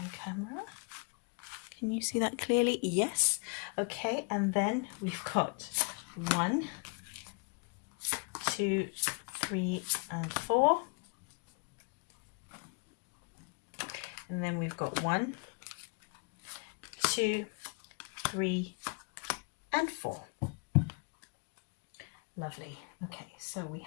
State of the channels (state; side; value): quieter; right; 35.8 dB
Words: camera. Can you see that clearly? Yes. Okay, and then we've got 1, 2, 3, and 4. And then we've got 1, 2, 3, and 4. Lovely. Okay, so we